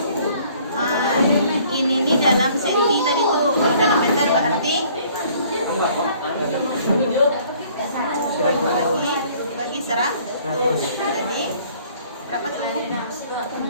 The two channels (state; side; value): inverted; both; correlation -0.57